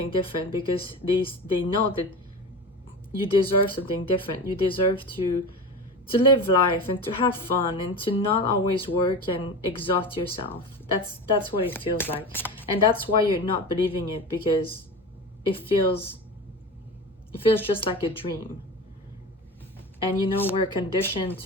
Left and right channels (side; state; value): both; normal; correlation 0.29